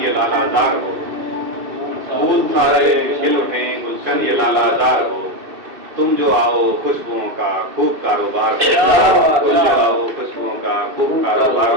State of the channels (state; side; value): late; left; 2.7 ms